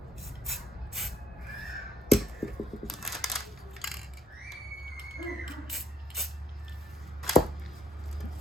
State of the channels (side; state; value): both; normal; correlation 0.68